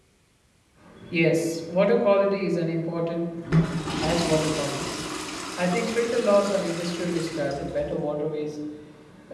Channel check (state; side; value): identical; both; correlation 1.00